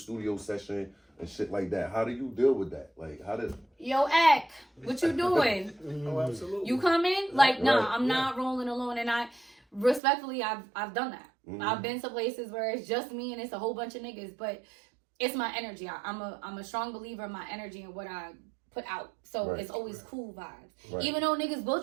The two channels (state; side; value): drops out; left; at 10.0 s